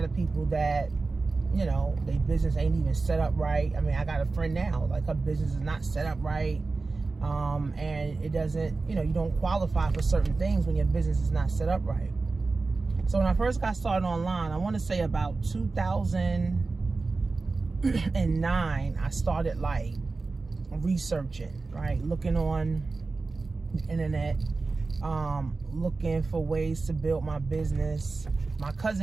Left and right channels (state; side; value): quieter; left; 3.8 dB